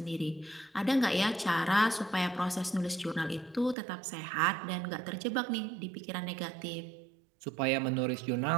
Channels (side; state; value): left; drops out; at 3.8 s